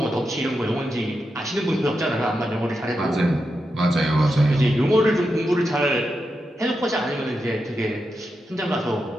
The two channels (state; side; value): normal; both; correlation 0.87